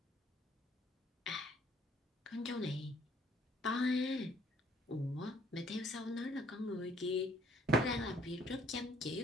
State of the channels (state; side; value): normal; both; correlation 0.62